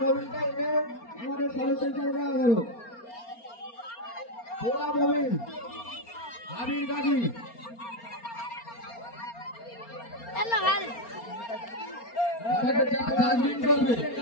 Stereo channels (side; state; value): right; late; 4.3 ms